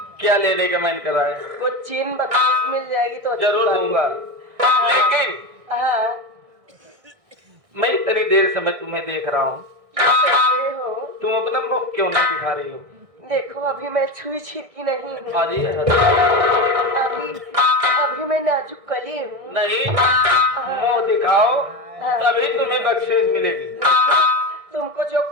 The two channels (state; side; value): late; left; 1.6 ms